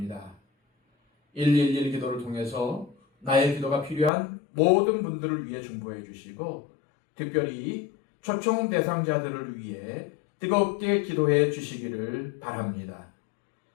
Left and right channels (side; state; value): right; drops out; at 4.1 s